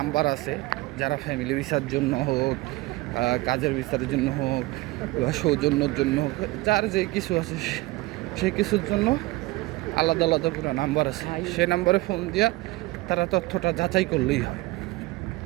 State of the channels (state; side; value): quieter; left; 20.5 dB